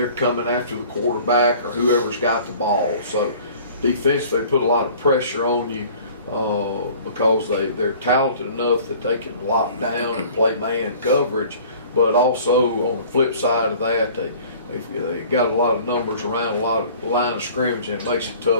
coming after the quarterback or whoever's got the ball. So defensively, they put a lot of pressure on you because they're talented enough that they can lock down and play man coverage. But also on the flip side of that, they got a lot of numbers around a lot of line of scrimmage, and it makes it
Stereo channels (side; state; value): both; inverted; correlation -0.48